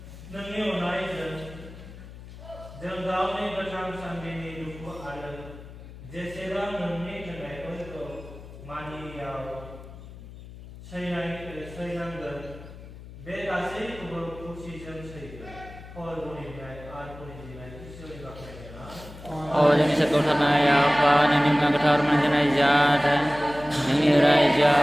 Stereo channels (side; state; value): left; noise; hum, 16 dB below the sound